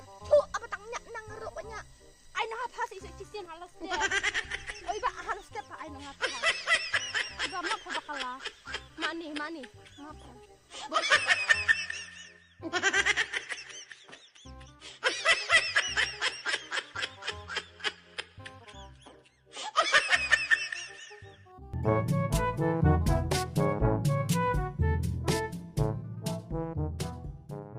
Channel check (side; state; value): both; identical; correlation 1.00